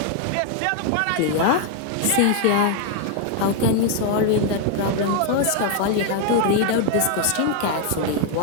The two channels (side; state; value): both; different; correlation 0.00